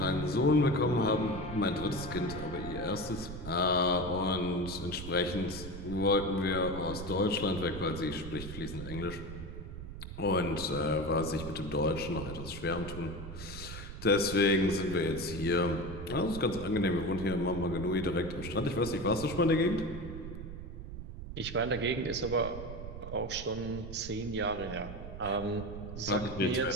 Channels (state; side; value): noise; right; rumble, 10 dB below the sound